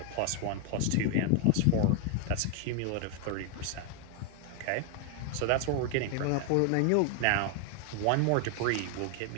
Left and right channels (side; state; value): both; different; correlation 0.01